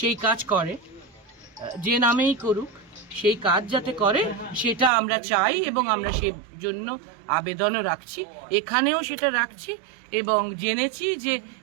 কাজ করে, যে নামেই করুক সেই কাজ যাতে করে সেটা আমরা চাই এবং আমরা সেই জন্য আবেদনও রাখছি, এখানেও সেটা রাখছি। এবং জেনেছি যে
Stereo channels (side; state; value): left; drops out; at 4.9 s